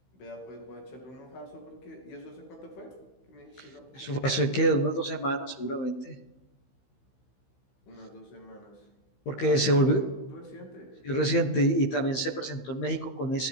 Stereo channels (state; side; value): late; right; 15 ms